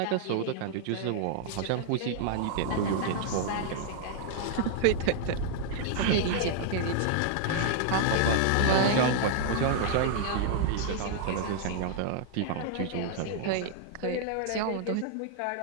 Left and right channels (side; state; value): both; different; correlation -0.01